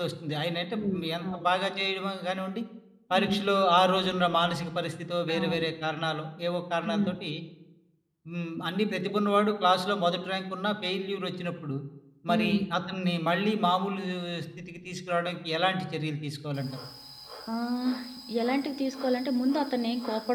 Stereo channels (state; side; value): identical; both; correlation 1.00